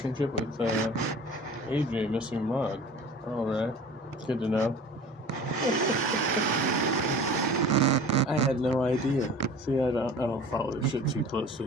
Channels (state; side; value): normal; both; correlation 0.42